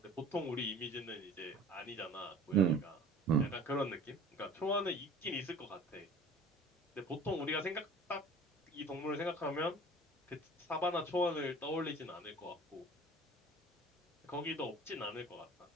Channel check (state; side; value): normal; both; correlation 0.44